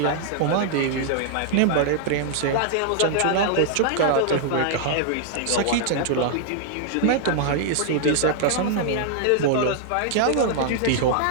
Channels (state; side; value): different; both; correlation -0.01